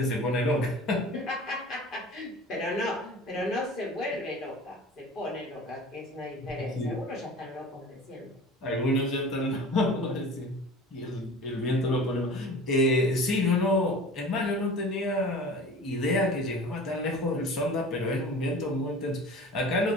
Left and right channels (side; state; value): both; normal; correlation 0.40